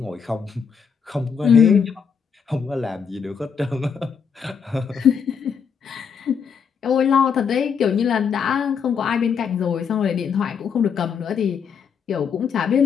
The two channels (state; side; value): quieter; right; 6.6 dB